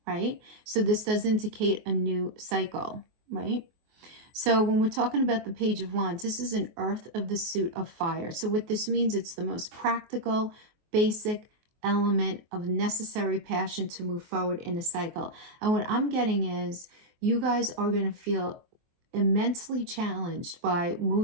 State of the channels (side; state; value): left; late; 23 ms